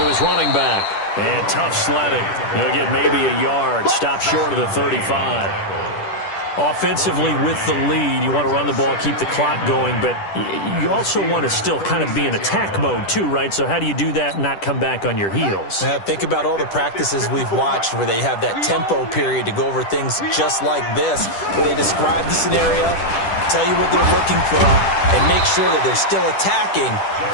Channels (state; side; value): late; right; 10 ms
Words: his running back. And tough sledding. He'll get maybe a yard. Stop short of the 35. Offensively with the lead, you want to run the ball, keep the clock going, but you also want to still kind of be in attack mode too, right? So how do you do that and not come back on your heels? Yeah, think about all the practices we've watched where they have that tempo period to go over things just like this, where they describe the scenario, tell you what they're looking for, and make sure that they're still attacking,